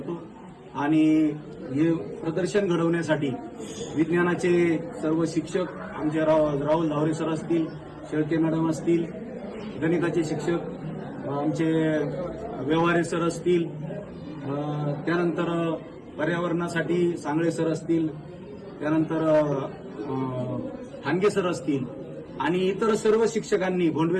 आणि हे प्रदर्शन घडवण्यासाठी विज्ञानाचे सर्व शिक्षक आमचे राहुल धावरे सर असतील, शेळके मॅडम असतील, गणिताचे शिक्षक आमचे व्यवहारे सर असतील, त्यानंतर पर्यावरणासाठी सांगळे सर असतील, त्यानंतर ठाणगे सर असतील आणि इतर सर्व शिक्षकांनी,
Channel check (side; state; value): both; identical; correlation 1.00